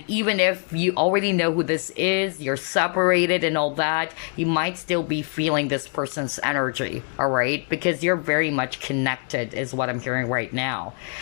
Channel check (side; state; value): right; quieter; 39.4 dB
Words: even if you already know who this is, you're separated and all that, you might still be feeling this person's energy, all right? Because you're very much connected is what I'm hearing right now.